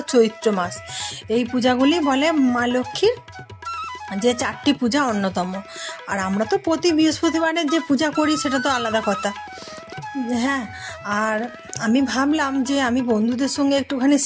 চৈত্র মাস, এই পূজাগুলি বলে মা লক্ষ্মীর যে চারটি পূজা অন্যতম। আর আমরা তো প্রতি বৃহস্পতিবারের যে পূজা করি সেটা তো আলাদা কথা। হ্যাঁ, আর আমি ভাবলাম যে আমি বন্ধুদের সঙ্গে একটুখানি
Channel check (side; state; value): both; identical; correlation 1.00